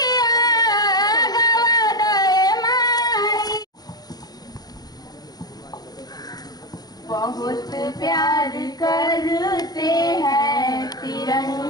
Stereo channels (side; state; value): right; late; 0.19 ms